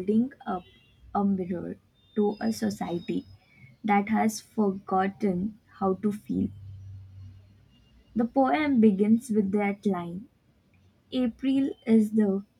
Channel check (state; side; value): identical; both; correlation 1.00